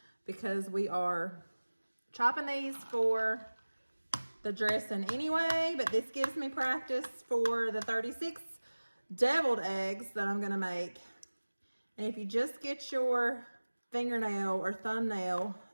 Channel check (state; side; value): inverted; both; correlation -1.00